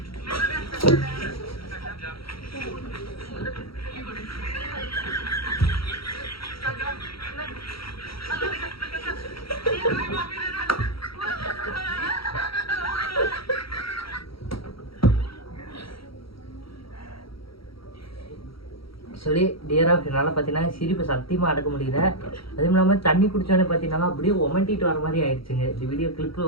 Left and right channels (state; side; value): late; right; 0.75 ms